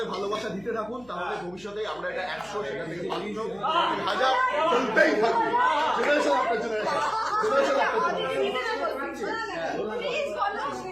ভালোবাসা দিতে থাকুন, তাহলে ভবিষ্যতে আমরা এটা 100 সেখান থেকে 1000 চলতেই থাকবে। জেনারেশন আপনার জেনারেশন, জেনারেশন আপনার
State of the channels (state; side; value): noise; left; hum, 26 dB below the sound